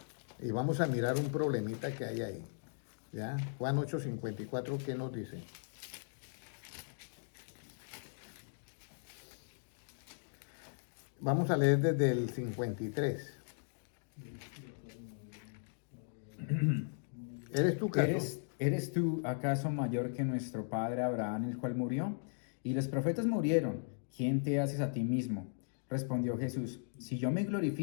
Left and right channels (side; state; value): right; silent; digital silence